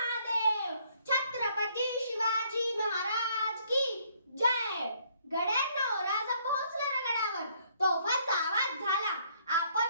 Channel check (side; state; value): both; inverted; correlation -0.66